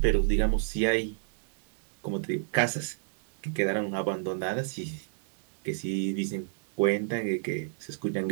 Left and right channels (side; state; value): left; silent; digital silence